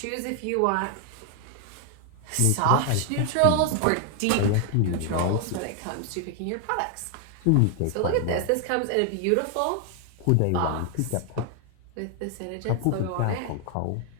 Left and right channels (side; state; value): both; different; correlation 0.00